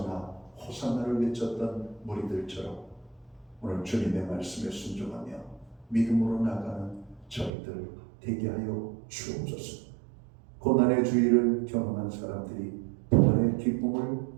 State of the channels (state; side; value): drops out; left; at 7.5 s